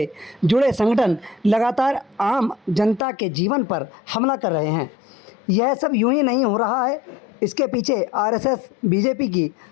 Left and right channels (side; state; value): right; drops out; at 3.0 s